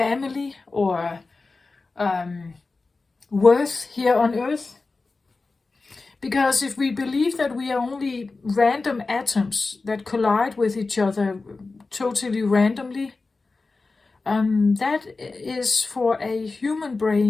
or worth here on Earth. Because if we believe that we are only random atoms that collide with each other totally randomly, that is for a human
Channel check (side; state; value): right; quieter; 3.8 dB